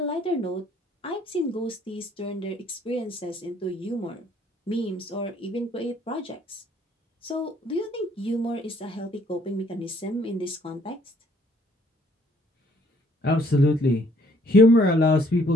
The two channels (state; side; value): normal; both; correlation 0.63